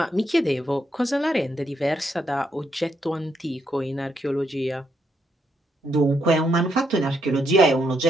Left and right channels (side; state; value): both; normal; correlation 0.78